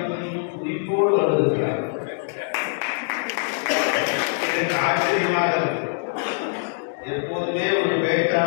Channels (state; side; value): silent; right; digital silence